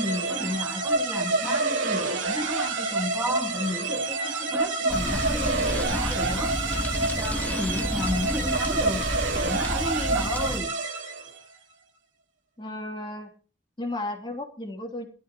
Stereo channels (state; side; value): normal; both; correlation 0.02